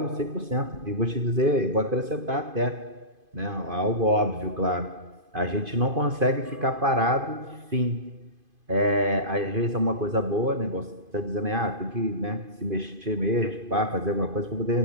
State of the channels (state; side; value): late; left; 2.5 ms